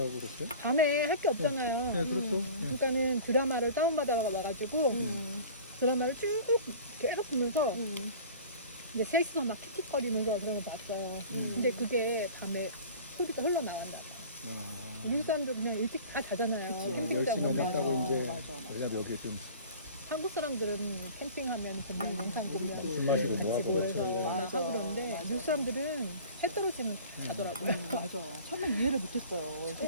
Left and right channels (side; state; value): both; inverted; correlation -0.42